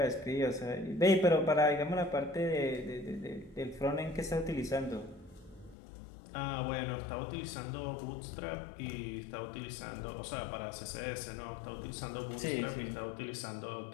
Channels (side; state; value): right; drops out; at 5.8 s